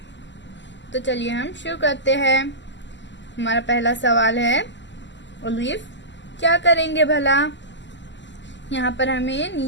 तो चलिए हम शुरू करते हैं। हमारा पहला सवाल है, अलीफ क्या करेंगे भला। यहाँ पर हमें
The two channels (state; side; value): late; right; 0.53 ms